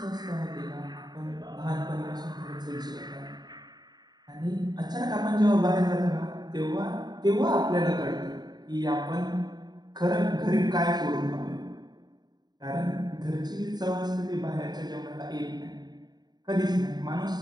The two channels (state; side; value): late; left; 0.20 ms